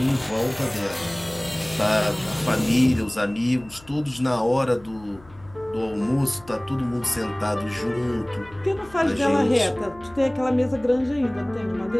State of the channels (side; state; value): left; noise; hum, 23 dB below the sound